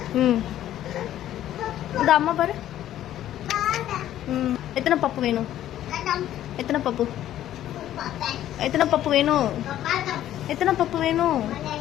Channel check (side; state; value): right; quieter; 12.3 dB